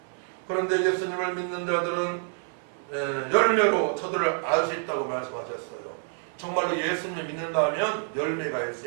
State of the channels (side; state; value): left; silent; 56 dB below the other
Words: 그런데 예수님을 믿는 자들은 열매로 저들을 알 수 있다고 말씀하셨어요. 정말로 예수님을 믿는다면 열매가